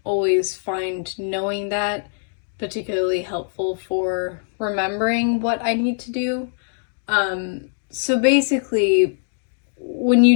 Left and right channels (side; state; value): right; silent; digital silence